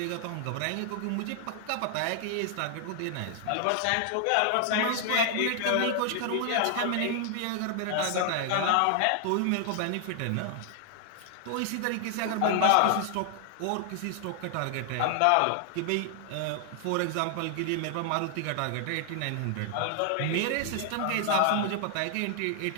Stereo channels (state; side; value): different; both; correlation 0.00